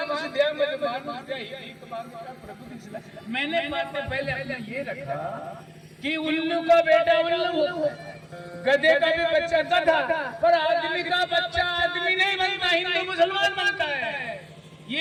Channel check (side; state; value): both; identical; correlation 1.00